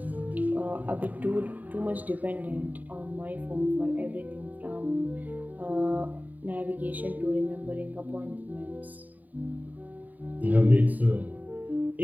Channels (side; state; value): left; late; 0.081 ms